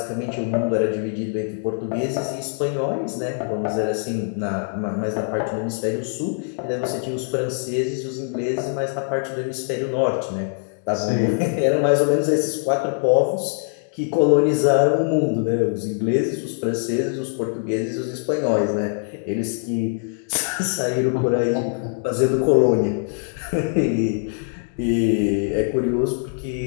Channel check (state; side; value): silent; right; 61 dB below the other